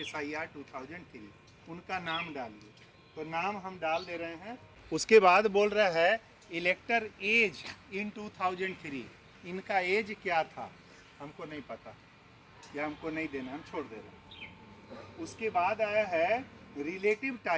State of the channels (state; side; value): identical; both; correlation 1.00